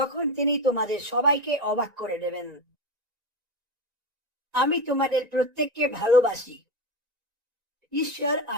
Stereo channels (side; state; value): left; late; 1.9 ms